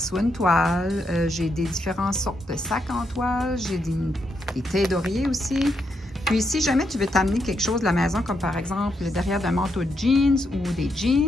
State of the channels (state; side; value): normal; both; correlation 0.80